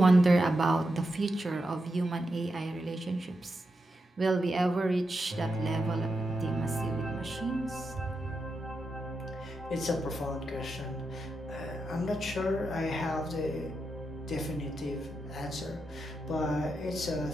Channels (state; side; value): normal; both; correlation 0.87